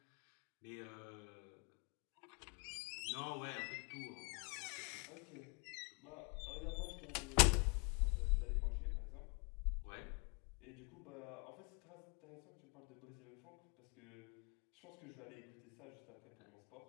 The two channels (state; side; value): quieter; right; 33.9 dB